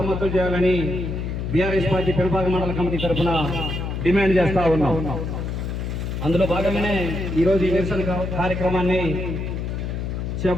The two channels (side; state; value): left; noise; hum, 3 dB below the sound